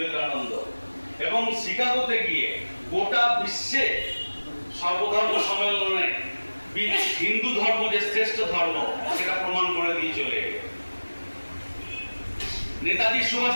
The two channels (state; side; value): inverted; both; correlation -1.00